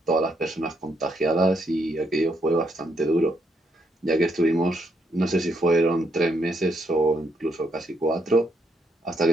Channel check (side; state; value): both; normal; correlation 0.76